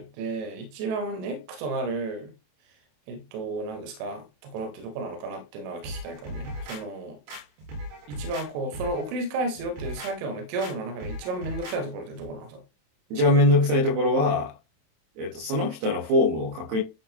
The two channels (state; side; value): late; left; 27 ms